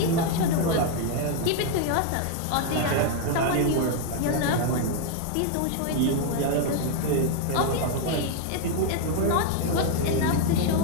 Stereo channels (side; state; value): both; different; correlation 0.00